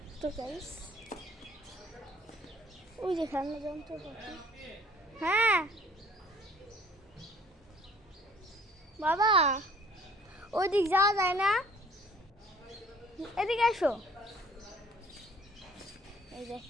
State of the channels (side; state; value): both; normal; correlation 0.56